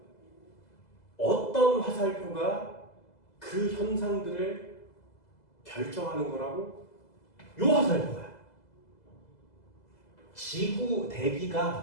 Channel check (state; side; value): late; right; 2.0 ms